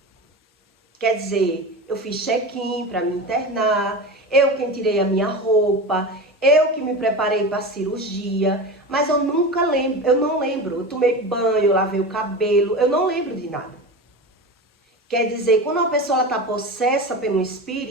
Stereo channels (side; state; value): both; normal; correlation 0.27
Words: Quer dizer, eu fiz check-in para me internar, eu quem tirei a minha roupa, eu que me preparei para a cirurgia, mas eu nunca lembro, eu não lembro. Eu tomei banho, eu lavei o cabelo, eu não lembro de nada. Quer dizer, quando uma pessoa está possessa pelo